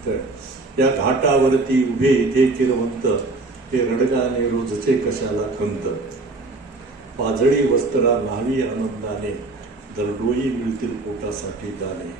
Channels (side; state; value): left; quieter; 3.3 dB